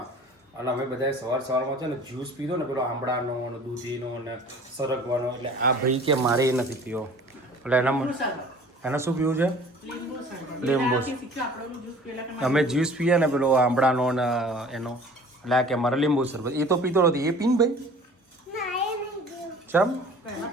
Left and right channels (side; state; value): both; normal; correlation 0.47